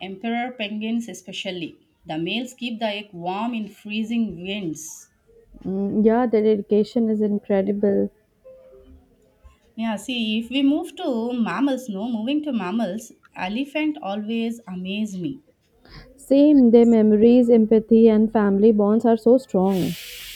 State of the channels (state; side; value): identical; both; correlation 1.00